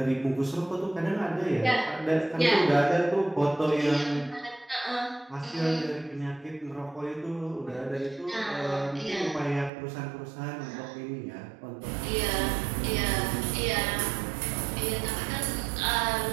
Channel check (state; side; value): drops out; left; at 9.7 s